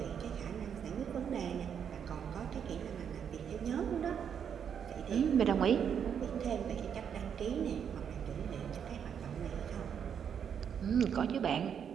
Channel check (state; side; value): quieter; left; 7.9 dB